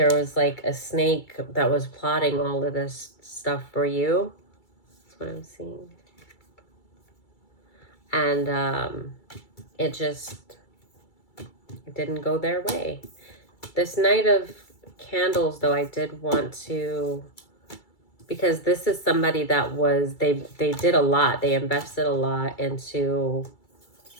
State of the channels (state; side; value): late; right; 2.3 ms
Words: was like a snake that was plotting all of this stuff for you. That's what I'm seeing. And it didn't go their way. This Knight of Candles, though, I did want to, because this is somebody that was, they did a lot. They invested a lot into